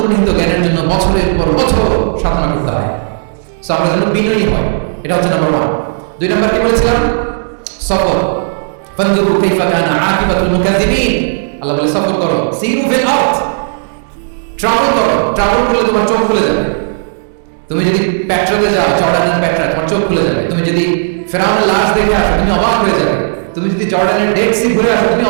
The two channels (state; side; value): silent; left; digital silence